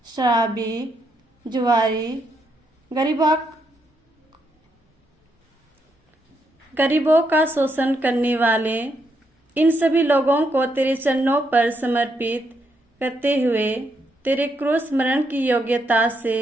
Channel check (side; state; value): both; normal; correlation 0.78